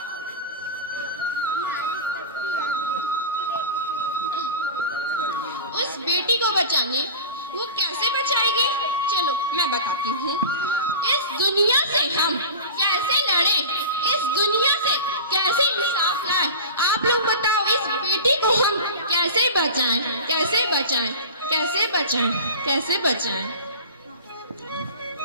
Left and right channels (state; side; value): inverted; both; correlation -0.32